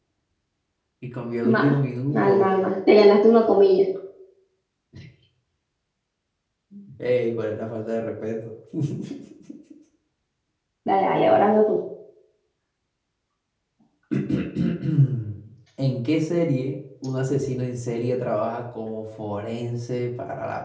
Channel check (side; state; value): both; identical; correlation 1.00